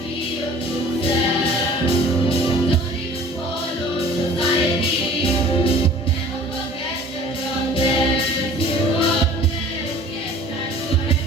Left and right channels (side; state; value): both; normal; correlation 0.47